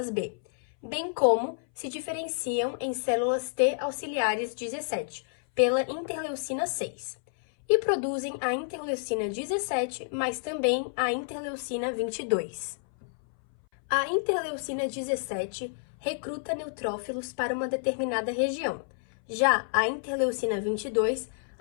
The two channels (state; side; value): silent; right; 58 dB below the other